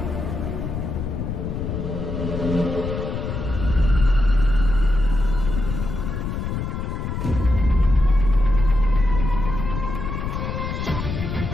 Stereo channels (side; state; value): left; noise; rumble, 4 dB below the sound